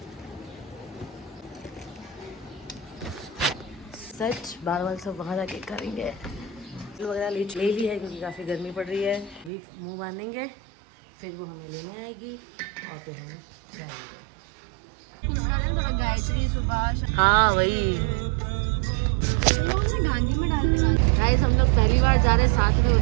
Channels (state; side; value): drops out; left; at 9.5 s